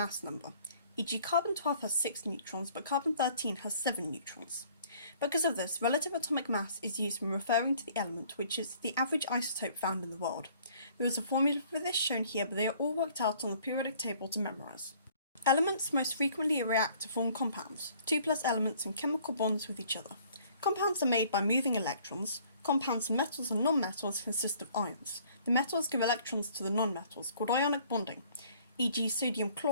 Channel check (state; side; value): inverted; both; correlation -0.57